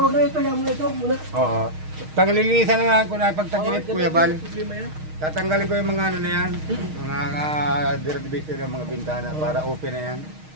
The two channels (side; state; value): left; late; 6.4 ms